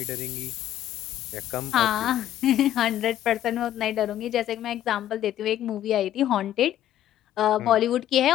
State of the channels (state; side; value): quieter; right; 12.0 dB